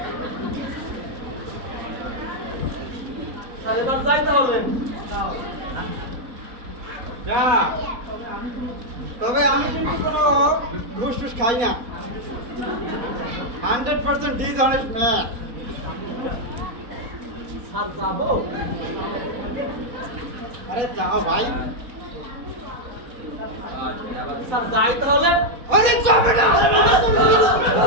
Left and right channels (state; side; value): late; left; 4.1 ms